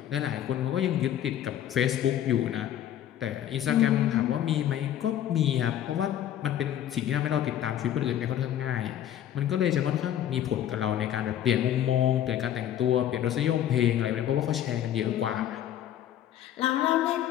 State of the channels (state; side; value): quieter; right; 11.1 dB